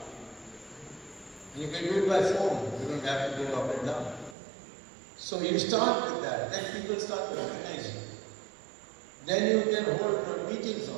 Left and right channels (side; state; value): left; drops out; at 4.4 s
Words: And you can do it by phone, you don't have to go up and down. So you start with that, then people start recognizing. Then you can hold meetings